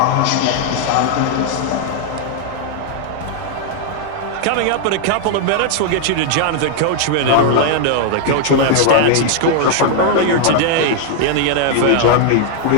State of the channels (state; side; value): different; both; correlation 0.00